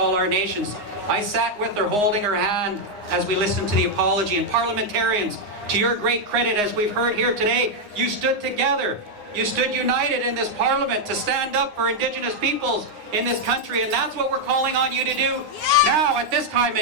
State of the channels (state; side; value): late; left; 9.6 ms